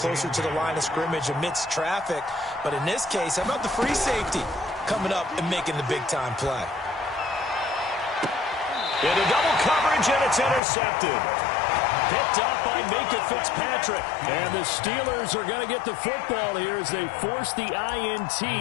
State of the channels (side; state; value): right; drops out; at 10.6 s